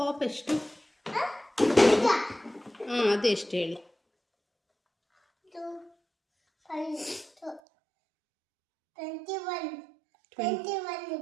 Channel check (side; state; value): left; drops out; at 7.6 s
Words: ಎಷ್ಟು? ಹಾಂ ಅದು ಎಷ್ಟು ಹೇಳಿ? ಇದು 21